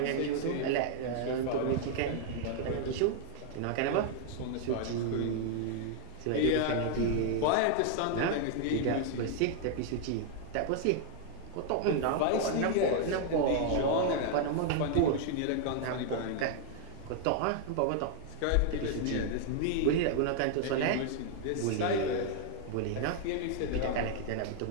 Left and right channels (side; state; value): both; different; correlation 0.00